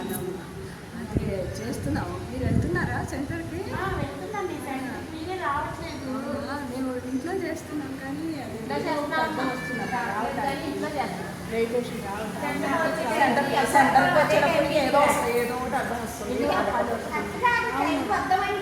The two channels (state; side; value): identical; both; correlation 1.00